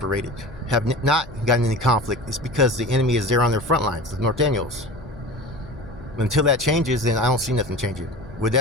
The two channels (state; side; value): noise; left; hum, 18 dB below the sound